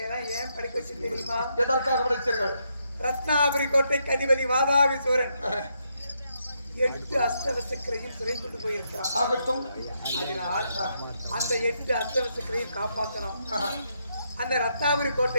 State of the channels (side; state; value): both; inverted; correlation -0.79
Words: எல்லாம் ஏன் படிக்க வச்சு தெரியுமா? எதற்காக படித்தீர்கள்? ரத்னாபுரி கோட்டைக்கு அதிபதி வாதாபி சூரன் 8 அஸ்தவசக்கரையும் சிறை கொண்டு போயிருக்கிறான். ஆகட்டும். அதனால் அந்த 8 அஸ்தவசக்கரையும் காப்பாற்றணும். அந்த ரத்னாபுரி